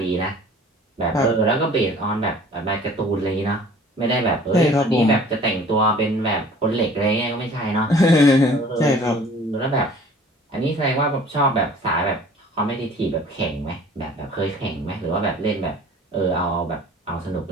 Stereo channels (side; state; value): both; normal; correlation 0.49